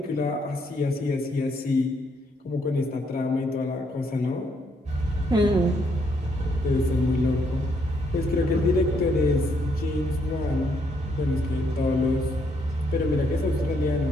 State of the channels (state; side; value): normal; both; correlation 0.73